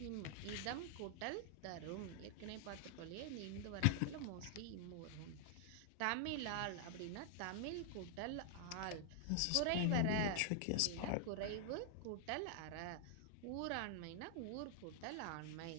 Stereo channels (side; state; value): both; different; correlation 0.00